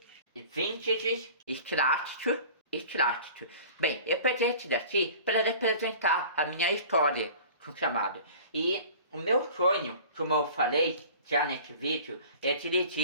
vintage, extrato. Bem, eu peguei esse daqui para representar a minha história com chamado. E o meu sonho, como eu falei já nesse vídeo, é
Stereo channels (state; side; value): inverted; both; correlation -0.43